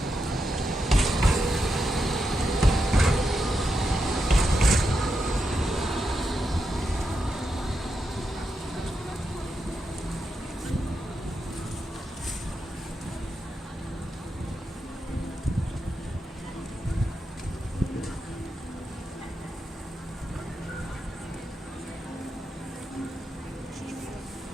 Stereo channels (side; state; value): both; normal; correlation 0.85